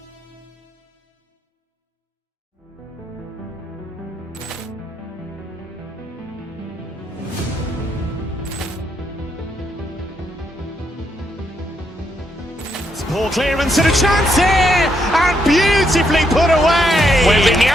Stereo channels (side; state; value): both; normal; correlation 0.77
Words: Ball clearance and a chance here, and beautifully put away.